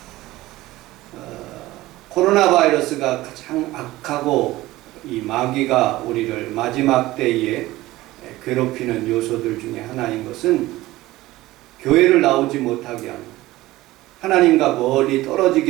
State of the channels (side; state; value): left; quieter; 17.6 dB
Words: 코로나 바이러스가 가장 악하고 이 마귀가 우리를 마지막 때에 괴롭히는 요소들 중에 하나인 것은 교회를 나오지 못하게 하는, 하나님과 멀리